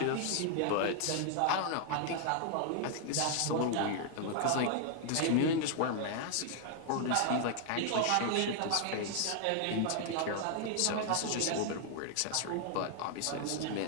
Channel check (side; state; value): both; different; correlation 0.00